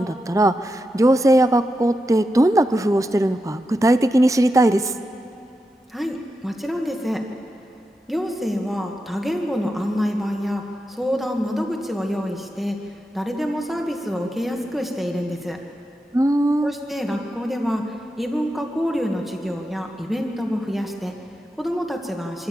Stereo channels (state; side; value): normal; both; correlation 0.88